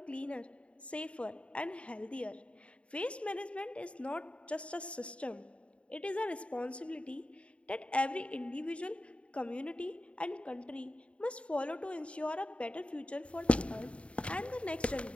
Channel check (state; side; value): late; right; 0.061 ms